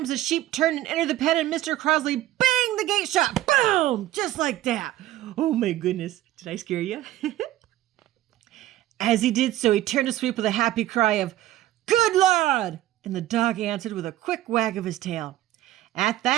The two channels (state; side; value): quieter; left; 14.5 dB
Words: the sheep turned and entered the pen, and Mr. Crosley banged the gate shut. Boom! Just like that. Oh, my goodness. Did I scare you? As he did so, he turned to Sweep with a happy cry of, "Good lad!" And the dog answered with a quick wag of his tail. At